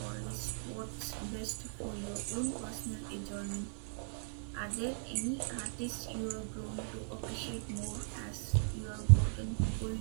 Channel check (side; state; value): left; silent; digital silence